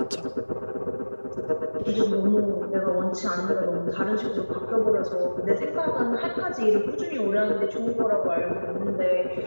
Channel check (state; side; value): inverted; both; correlation -1.00